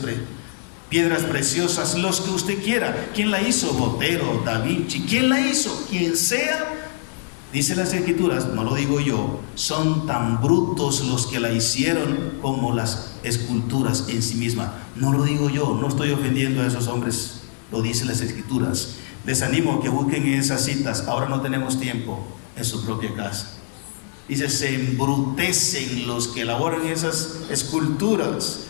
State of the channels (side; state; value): right; silent; digital silence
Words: piedras preciosas, los que usted quiera. ¿Quién la hizo? Botero, Da Vinci. ¿Quién la hizo? Quien sea. Dice las Escrituras, no lo digo yo, son tan brutos los que la hicieron como las esculturas en sí mismas. No lo digo yo, no estoy ofendiendo a esos hombres, lo dicen las Escrituras. Les animo a que busquen esas citas, ahora no tenemos tiempo, en su propia casa. Dice, se embrutecen los que elaboran esas esculturas,